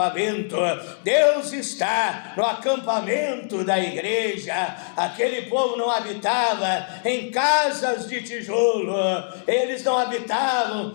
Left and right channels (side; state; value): right; silent; digital silence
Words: Deus está no acampamento da igreja. Aquele povo não habitava em casas de tijolo, eles não habitavam